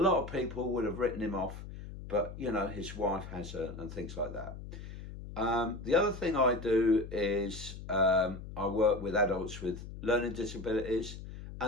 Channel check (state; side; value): noise; left; hum, 11 dB below the sound